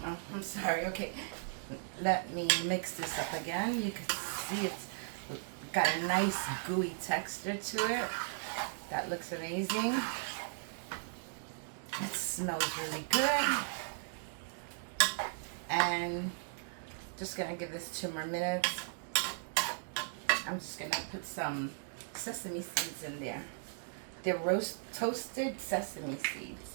Oh, I'm sorry. Okay. Let me mix this up again. You can see it's got a nice gooey texture to it. That looks amazing. It smells really good. And just gonna give this 2 more minutes. I'm just gonna put some sesame seeds in there. They're toasted sesame seeds.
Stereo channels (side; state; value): left; silent; digital silence